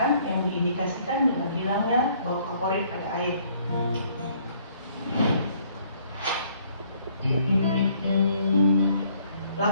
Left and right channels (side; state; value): both; inverted; correlation -0.63